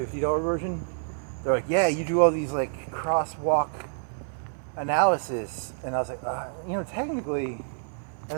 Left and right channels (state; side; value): silent; left; 59 dB below the other